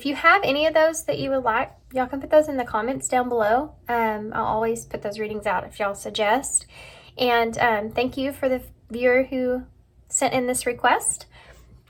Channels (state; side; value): identical; both; correlation 1.00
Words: you have any of those that you would like, y'all can put those in the comments down below. I'll always put those readings out if y'all suggest. And thank you for the viewer who sent in this request.